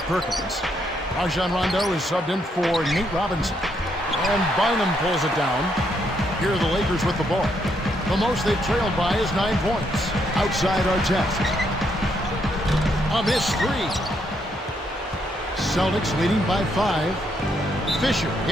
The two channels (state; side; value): normal; both; correlation 0.75